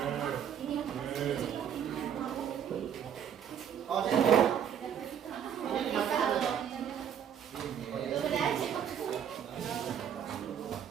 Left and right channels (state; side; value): quieter; left; 8.8 dB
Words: Oh, jadi ini dimakan atau?